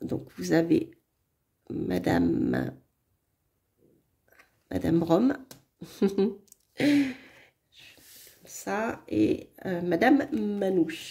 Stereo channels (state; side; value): identical; both; correlation 1.00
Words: donc vous avez Madame Rome. Ça, et Madame